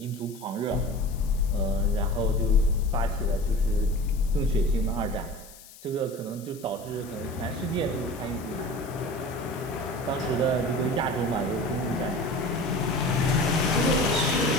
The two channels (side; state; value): left; noise; hiss, 20 dB below the sound